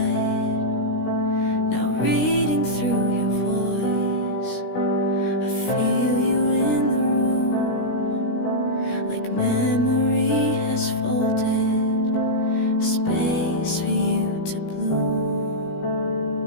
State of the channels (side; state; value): right; late; 17 ms